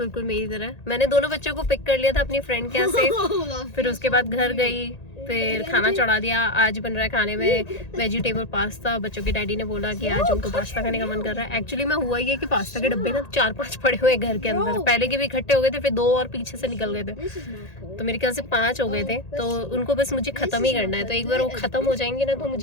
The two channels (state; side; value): late; right; 1.8 ms